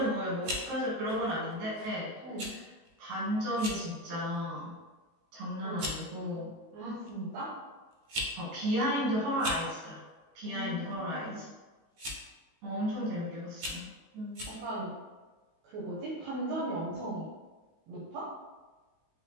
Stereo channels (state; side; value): late; left; 19 ms